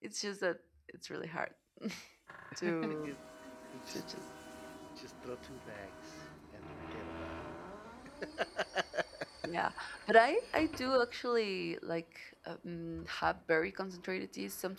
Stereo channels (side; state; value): both; identical; correlation 1.00